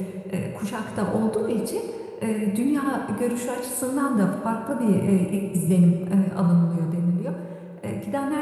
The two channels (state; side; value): identical; both; correlation 1.00